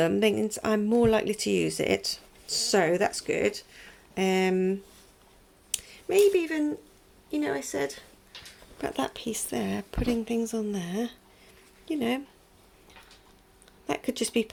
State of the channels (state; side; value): identical; both; correlation 1.00